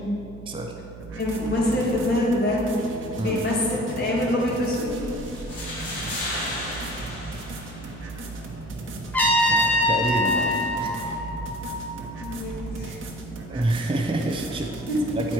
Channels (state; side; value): noise; right; hum, 15 dB below the sound